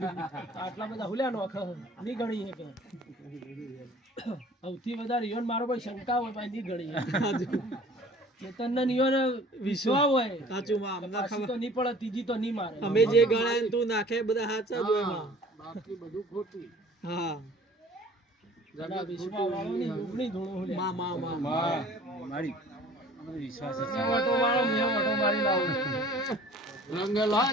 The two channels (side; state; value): both; normal; correlation 0.49